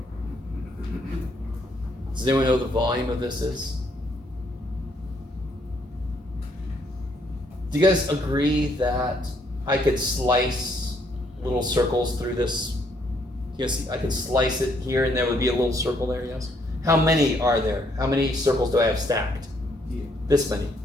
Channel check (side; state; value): both; normal; correlation 0.70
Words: Does anyone know what the volume of this is? Do you guys agree that I could slice little circles through this? Yes, I could slice it here and there would be a little circle there, yes? How many are there? How many circles do I have stacked? Yeah. This many.